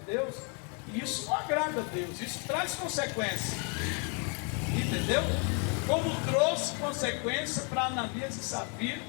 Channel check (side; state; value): right; quieter; 36.8 dB